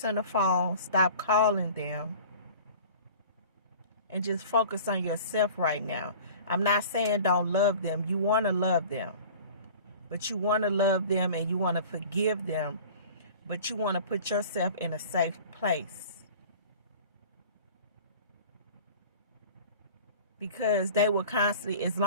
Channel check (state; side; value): inverted; both; correlation -0.42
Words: the phone. Stop calling them. And just focus on yourself right now. I'm not saying don't love them. You want to love them. But you want to love them and you want to forgive them. But you want to put yourself in a safe place. Because they will constantly, as